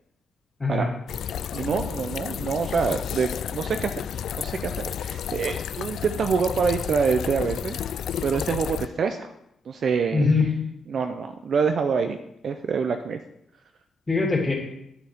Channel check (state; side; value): normal; both; correlation 0.75